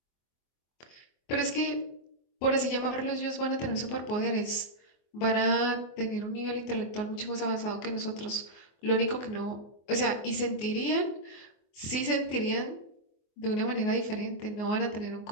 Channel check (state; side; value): late; right; 24 ms